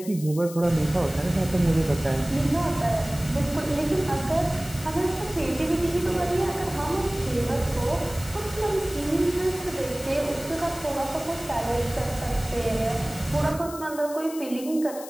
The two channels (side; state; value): left; noise; hiss, 14 dB below the sound